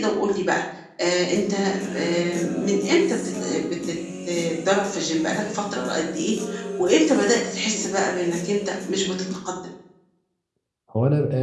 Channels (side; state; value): both; identical; correlation 1.00